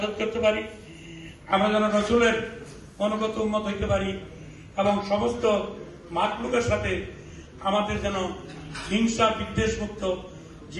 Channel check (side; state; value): both; identical; correlation 1.00